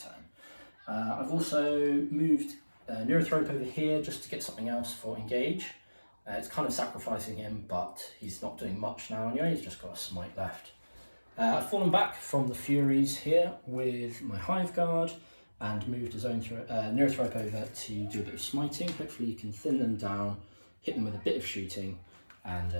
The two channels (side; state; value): both; inverted; correlation -1.00